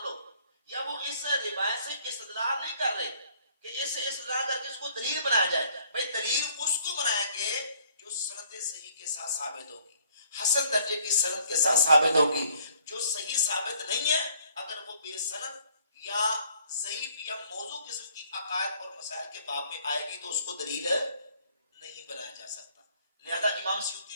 لو، یا وہ اس روایت سے استدلال نہیں کر رہے کہ اس سے استدلال کر کے اس کو دلیل بنایا جائے. بھائی دلیل اس کو بنائیں گے جو سند صحیح کے ساتھ ثابت ہوگی، حسن درجے کی سند کے ساتھ ثابت ہوگی. جو صحیح ثابت نہیں ہے، اگر وہ بے سند یا ضعیف یا موضوع قسم کی عقائد اور مسائل کے باب میں آئے گی تو اس کو دلیل نہیں بنایا جا سکتا. لہذا امام سیوطی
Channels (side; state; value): both; inverted; correlation -0.61